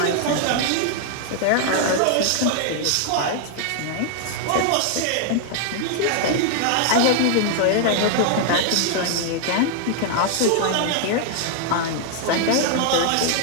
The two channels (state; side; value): different; both; correlation 0.00